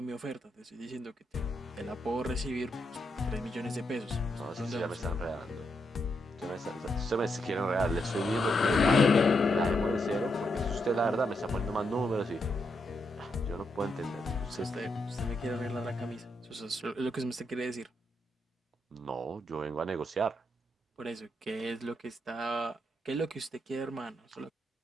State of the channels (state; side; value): normal; both; correlation 0.81